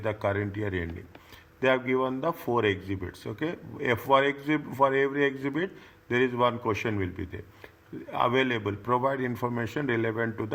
the current year ending? They have given the 4 exhibits. Okay, for every exhibit, there is one question will be there. Available. Provide information relevant to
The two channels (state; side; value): identical; both; correlation 1.00